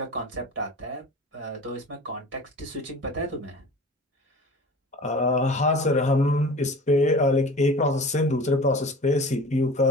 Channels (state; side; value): normal; both; correlation 0.39